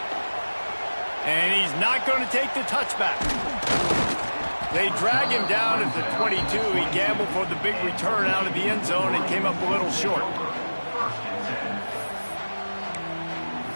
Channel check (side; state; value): both; inverted; correlation -1.00